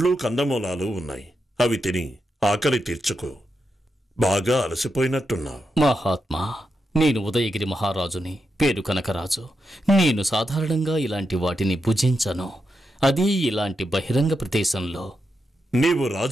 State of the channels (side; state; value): both; normal; correlation 0.86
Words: కందమూలాలు ఉన్నాయి. అవి తిని ఆకలి తీర్చుకో. బాగా అలసిపోయినట్టున్నావు. మహాత్మా, నేను ఉదయగిరి మహారాజుని, పేరు కనకరాజు. నేను సాధారణంగా ఇలాంటి వాటిని భుజించను, అది ఇలాంటి బహిరంగ ప్రదేశంలో. నీవు